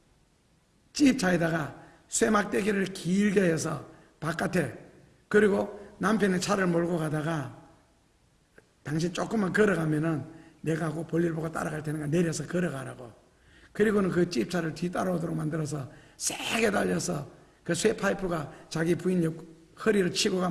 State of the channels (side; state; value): both; identical; correlation 1.00